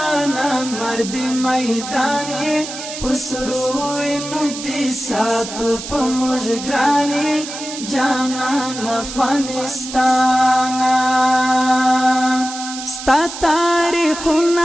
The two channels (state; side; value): noise; right; hiss, 9 dB below the sound